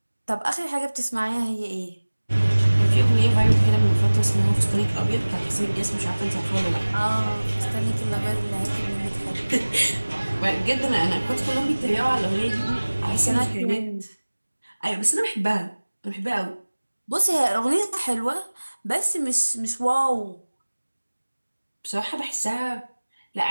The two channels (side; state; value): both; inverted; correlation -1.00